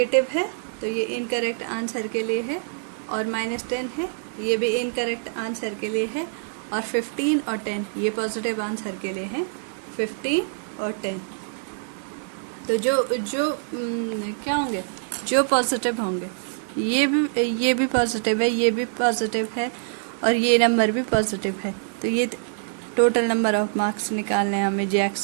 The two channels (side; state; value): left; silent; digital silence